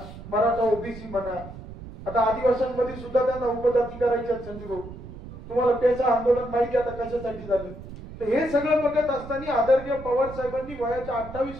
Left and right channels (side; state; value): right; noise; rumble, 13 dB below the sound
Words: मराठा ओबीसी म्हणा, आता आदिवासींमध्ये सुद्धा त्यांना उपजाती करायचे आहेत. संजू भाऊ, तुम्हाला पेचा आंदोलन माहिती आता कशासाठी झालं. तर हे सगळं बघत असताना आदरणीय पवार साहेबांनी वयाच्या